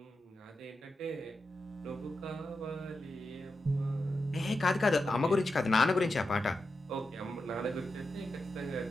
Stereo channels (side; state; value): both; normal; correlation 0.89